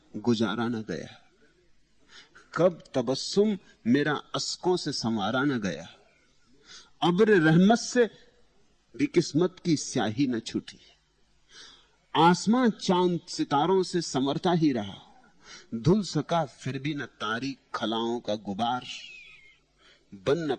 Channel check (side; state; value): both; identical; correlation 1.00